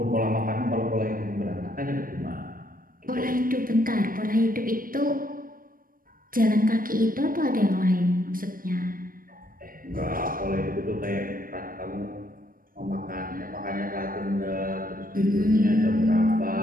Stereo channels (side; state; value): left; late; 0.41 ms